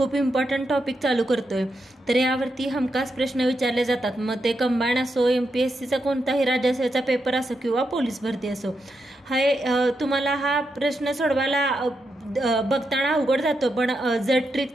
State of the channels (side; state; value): both; normal; correlation 0.84